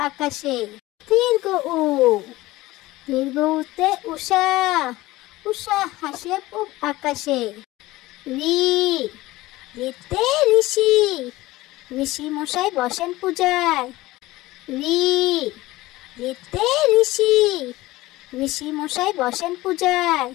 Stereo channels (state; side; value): quieter; right; 18.4 dB